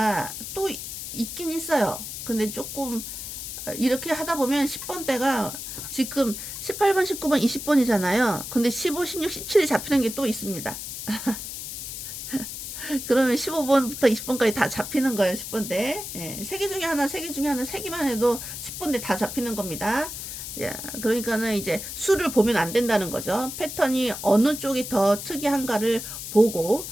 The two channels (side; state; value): left; noise; hiss, 8 dB below the sound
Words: 또 있긴 있어요. 근데 조금 이렇게 하다 보면 10번 대가 지금 18번, 19번, 20번이잖아요. 근데 15, 16, 17이 잡히는 게 또 있습니다. 그러면 15번부터 20번까지 다 잡히는 거예요. 10번대. 예, 3개 중에 하나, 3개 중에 하나, 3개만 해도 10번대 다 잡히는 겁니다. 야, 그러니까는 이제 수를 보면 안 된다는 거죠. 패턴이 어느 쪽이 더 특이한가를 보고